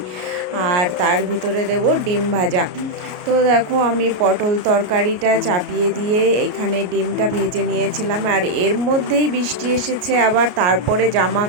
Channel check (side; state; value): left; late; 33 ms